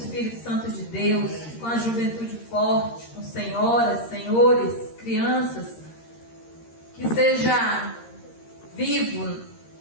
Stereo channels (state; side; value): late; right; 13 ms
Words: Santo de Deus, com a juventude forte, com senhoras, senhores, crianças. Que seja vivo,